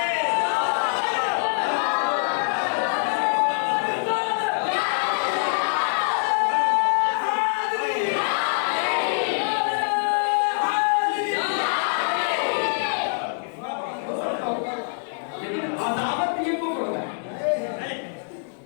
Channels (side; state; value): right; silent; digital silence